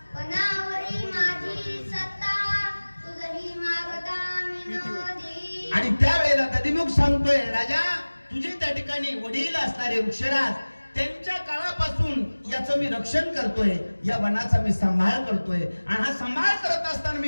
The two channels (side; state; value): both; inverted; correlation -1.00